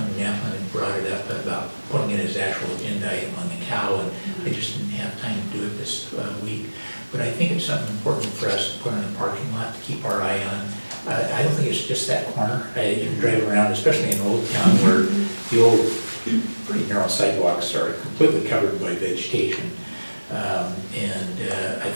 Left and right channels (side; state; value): both; inverted; correlation -1.00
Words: Yapman had brought it up about putting it as actual agenda item on the cow, and I just didn't have time to do it this week. But I think it's something important for us to put in the parking lot to keep our eye on. I don't think it's just that corner. You can drive around, especially in Old Town, where the old, pretty narrow sidewalks are completely covered by vegetation. I